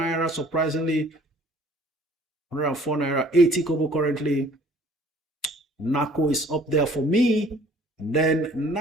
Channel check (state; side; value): normal; both; correlation 0.54